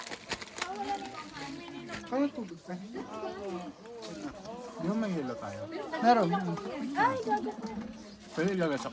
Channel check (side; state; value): both; identical; correlation 1.00